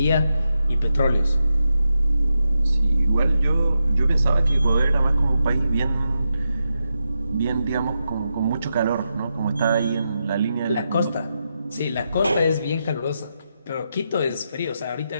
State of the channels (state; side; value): inverted; both; correlation -0.87